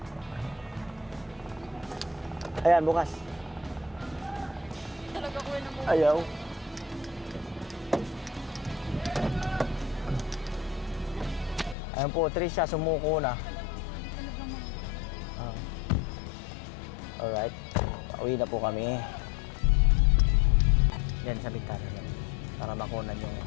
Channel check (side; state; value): right; drops out; at 11.8 s